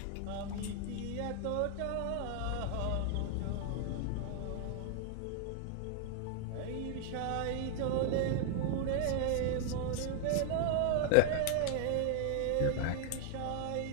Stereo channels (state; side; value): different; both; correlation 0.00